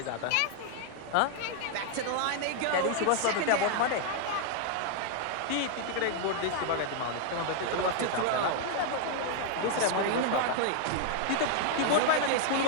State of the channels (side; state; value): both; different; correlation 0.00